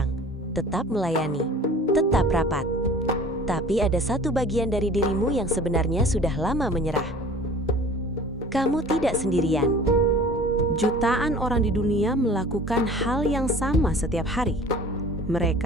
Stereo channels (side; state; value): both; normal; correlation 0.45